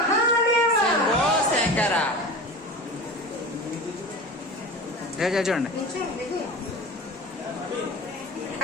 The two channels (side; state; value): both; normal; correlation 0.32